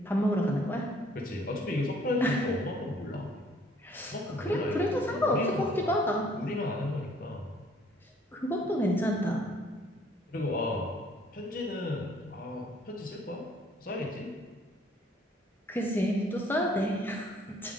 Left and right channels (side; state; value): both; normal; correlation 0.60